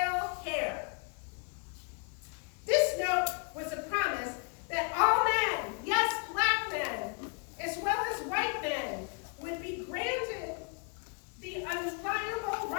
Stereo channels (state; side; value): quieter; right; 37.5 dB